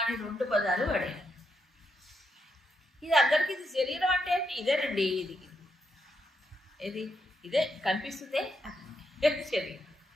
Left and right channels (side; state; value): both; normal; correlation 0.81